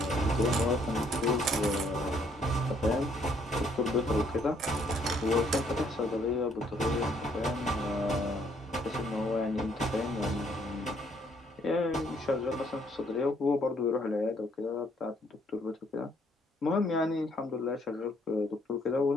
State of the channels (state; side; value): normal; both; correlation 0.67